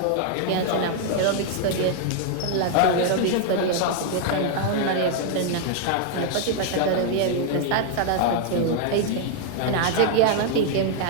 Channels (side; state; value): both; different; correlation -0.01